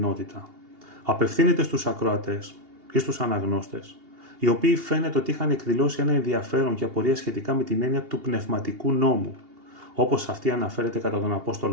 απευθύνεται στους ακροατές ή στους αναγνώστες, οι οποίοι φαίνεται ότι είχαν εκδηλώσει ένα ενδιαφέρον και απορία σχετικά με την έννοια του πνευματικού νόμου, όπως αυτή αναφέρεται κατά τον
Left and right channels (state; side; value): late; left; 2.8 ms